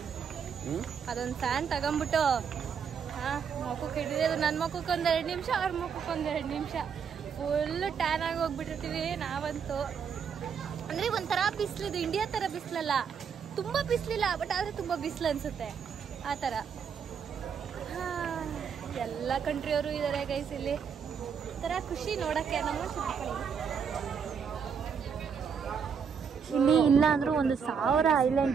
ಅದೊಂದು ಫ್ಯಾನ್ ತಗೊಂಡ್ಬಿಟ್ಟು ಮುಖಕ್ಕೆ ಹಿಡಿಯೋದು. ನನ್ನ ಮುಖಕ್ಕೆ ಒಂದು 2 ನಿಮಿಷ, ಅವ್ರ ಮುಖಕ್ಕೆ ಒಂದು 2 ನಿಮಿಷ ಫುಲ್ ಟ್ಯಾನ್ ಆಗಿ ಹೋಗ್ಬಿಟ್ಟಿರ್ತೀವಿ ನಾವಂತೂ. ಅಂದ್ರೆ ಒಂಥರ ಬಿಸಿಲಿದು, ಇಂಡಿಯಾ ತರ ಬಿಸಿಲಲ್ಲ, ತುಂಬಾ ಬಿಸಿಲಿಲ್ಲ, ಬಟ್ ಆದ್ರೆ ತುಂಬಾ ಬಿಸಿಲು ಅನ್ಸುತ್ತೆ ಆ ತರ. ಎಲ್ಲ ಕಂಟ್ರಿಯವರು ಇದಾರೆ ಗೈಸ್ ಇಲ್ಲಿ. ತರ ಖುಷಿ ನೋಡಕ್ಕೆ. ನಮ್ಮ ಇಲ್ಲಿ ಇಲ್ಲ ಅಂದ್ರೂ 1000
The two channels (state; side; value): quieter; left; 6.7 dB